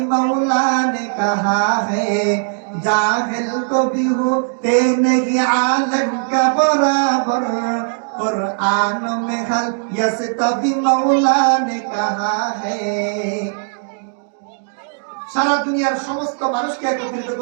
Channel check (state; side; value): silent; left; digital silence